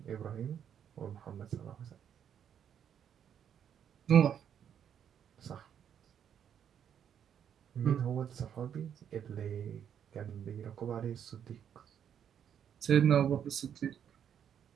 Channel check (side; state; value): left; quieter; 8.8 dB